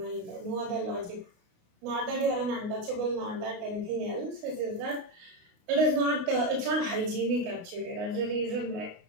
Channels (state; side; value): late; left; 29 ms